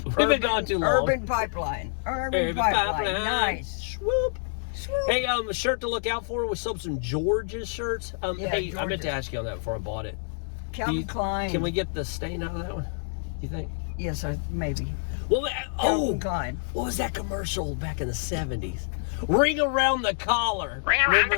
We've been gone too long. Urban Pipeline. Urban Pipeline. Nice. Swoop. Swoop. Hey, a shirt to look out for. We sold some George's shirts. Yeah, hey, I meant to George's. ask you on that before I bought it. Calvin Klein. Can we get the stain out of that one? You think? Yes, maybe. Well, Calvin Klein. what was that commercial back in the 70s? Ring around the collar. Ring around the Remember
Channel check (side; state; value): right; silent; digital silence